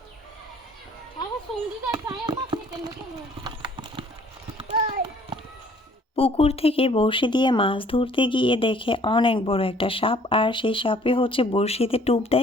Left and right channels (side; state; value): both; normal; correlation 0.57